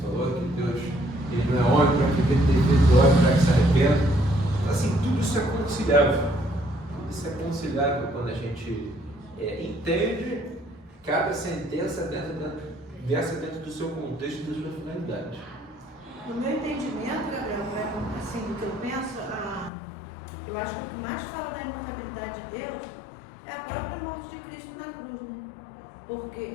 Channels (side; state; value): right; drops out; at 19.7 s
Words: falou, que Deus ele não é homem para que ele tenha feito homem para que se arrependa. Então, assim, tudo isso é conciliável. Tudo isso é conciliável quando a gente entende cada sentença dentro do seu contexto e da sua finalidade. No meu entendimento, Gabriel, assim, do que eu penso, eu acho que o que mais fala da imutabilidade de Deus é a própria morte de Cristo na cruz, né?